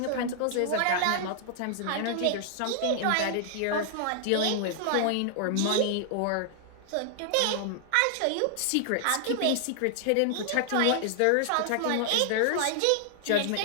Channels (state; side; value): different; both; correlation -0.01